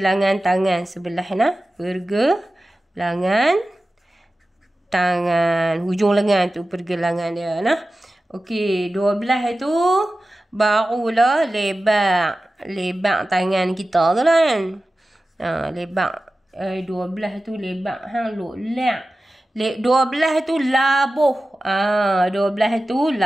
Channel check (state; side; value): normal; both; correlation 0.95